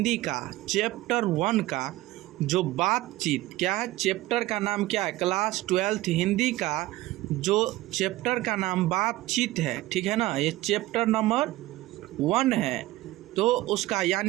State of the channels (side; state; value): left; quieter; 17.5 dB